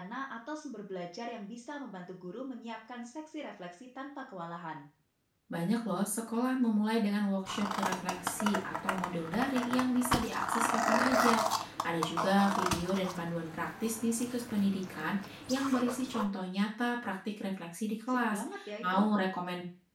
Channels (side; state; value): both; identical; correlation 1.00